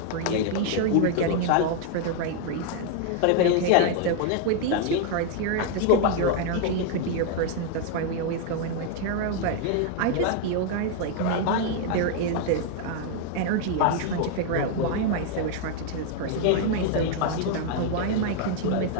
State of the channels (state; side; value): different; both; correlation 0.00